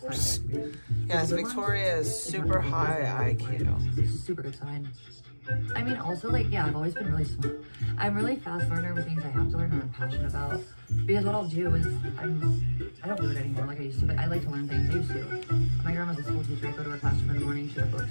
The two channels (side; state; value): both; inverted; correlation -1.00